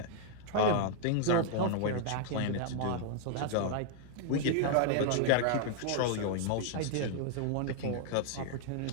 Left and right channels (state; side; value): different; both; correlation 0.00